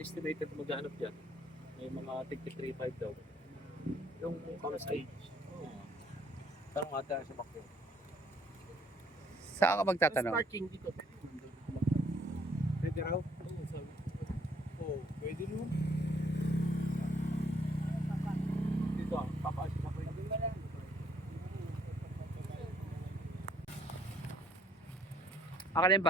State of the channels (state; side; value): normal; both; correlation 0.64